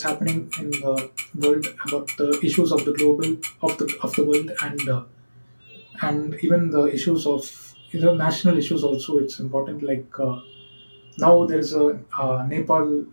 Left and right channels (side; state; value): both; inverted; correlation -1.00